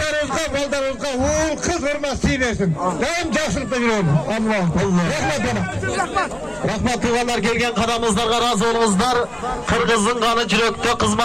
baldarımızga, oğul kız hürmesi versin. Daim jakşılıkta yürüyorum. Allah Allah. Rahmet bana. Rahmet tuğalar gelgen kadamızlarga razı olunuzlar. Kırgızın kanı yürekte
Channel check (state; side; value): noise; left; hum, 27 dB below the sound